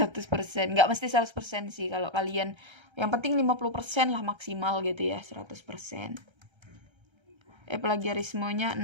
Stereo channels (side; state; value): left; late; 1.3 ms